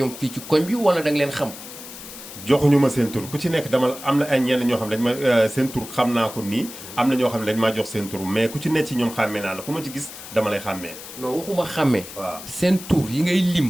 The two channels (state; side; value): noise; left; hiss, 13 dB below the sound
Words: fii ci koñ bi wala da nga leen xam. joxuñu ma seen tur ku ci nekk dama am na ay ñenn ñoo xam ne dañ ma seen tur xam naa ko nii am na ñoo xam ne dañ maa jox seen tur mais ku ci nekk ci ñoom xàmmee naa la ku ma ci gis dama lay xàmmee. non waxuma xàmmee. waaw seen tur yi ngay